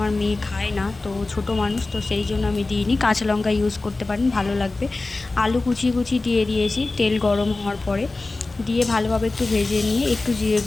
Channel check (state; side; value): quieter; right; 3.3 dB